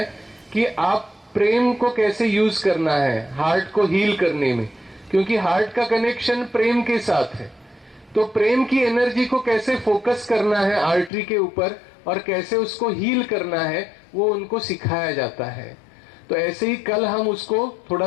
कि आप प्रेम को कैसे यूज करना है हार्ट को हील करने में, क्योंकि हार्ट का कनेक्शन प्रेम के साथ है। तो प्रेम की एनर्जी को कैसे फोकस करना है आर्टरी के ऊपर और कैसे उसको हील करना है वो उनको सिखाया जाता है। तो ऐसे ही कल हम उसको थोड़ा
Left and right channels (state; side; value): drops out; right; at 11.1 s